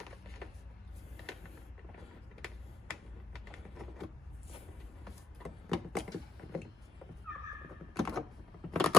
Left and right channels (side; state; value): right; quieter; 3.1 dB